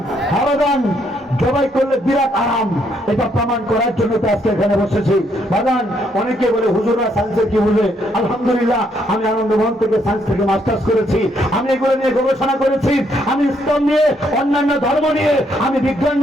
হারাদান জবাই করলে বিরাট আরাম, এটা প্রমাণ করার জন্য তো আজকে এখানে বসেছি। বাগান অনেকে বলে হুজুররা সায়েন্সের কি বুঝে? আলহামদুলিল্লাহ আমি আনন্দমোহন থেকে সায়েন্স থেকে মাস্টার্স করেছি, আমি এগুলো নিয়ে গবেষণা করেছি, আমি ইসলাম নিয়ে অন্যান্য ধর্ম নিয়ে আমি বিজ্ঞান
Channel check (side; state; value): both; normal; correlation 0.72